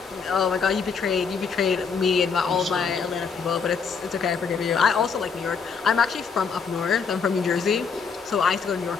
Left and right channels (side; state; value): right; quieter; 5.7 dB